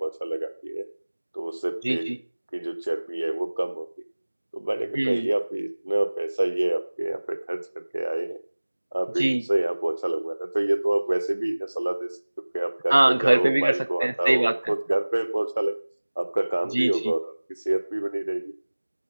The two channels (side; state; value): both; inverted; correlation -1.00